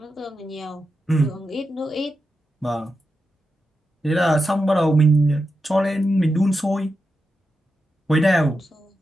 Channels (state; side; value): normal; both; correlation 0.88